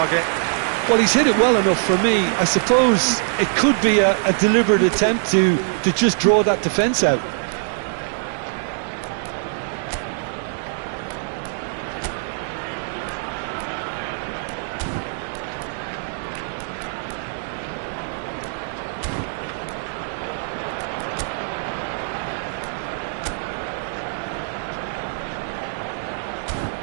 Well, he's hit it well enough for me. I suppose it could be a deliberate attempt to just draw that defence out.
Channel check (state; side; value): silent; left; digital silence